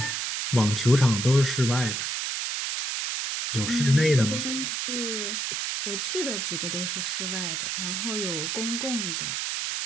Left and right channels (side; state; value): right; noise; hiss, 2 dB below the sound